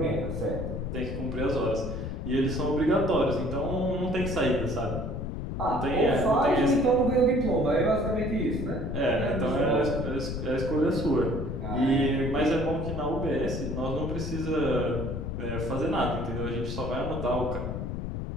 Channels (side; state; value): left; noise; rumble, 4 dB below the sound